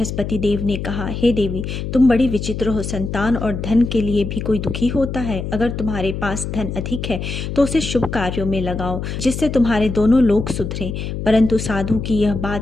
देव ने कहा, हे देवी, तुम बड़ी विचित्र हो। संतान और धन के लिए भी कोई दुखी होता है। अगर तुम्हारे पास धन अधिक है तो उसे शुभ कार्यों में लगाओ जिससे तुम्हारे दोनों लोग सुधरे। परंतु साधु की यह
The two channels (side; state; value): left; noise; hum, 5 dB below the sound